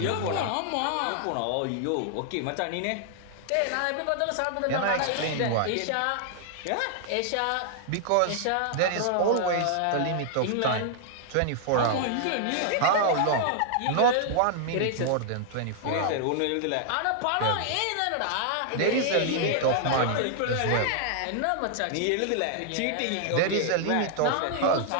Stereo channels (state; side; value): different; both; correlation 0.00